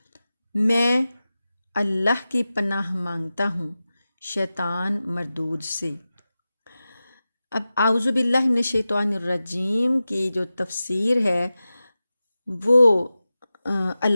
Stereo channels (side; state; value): both; inverted; correlation -0.94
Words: میں اللہ کی پناہ مانگتا ہوں شیطان مردود سے۔ اب اعوذ باللہ من الشیطان الرجیم کی جو تفسیر ہے وہ